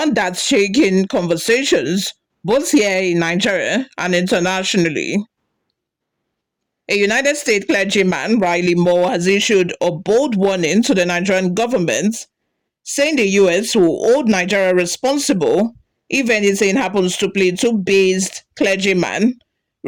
that's shaking conversations both here in Nigeria and internationally. A United States clergyman, Riley Moore, has issued a bold warning to the Nigerian government, saying the US will hold Nigeria responsible if anything happens to Plateau-based clergyman,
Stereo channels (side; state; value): both; identical; correlation 1.00